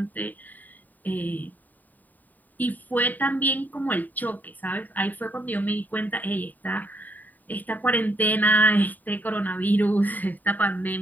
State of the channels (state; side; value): late; right; 0.085 ms